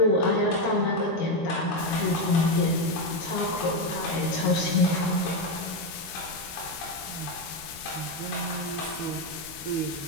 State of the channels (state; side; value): late; right; 13 ms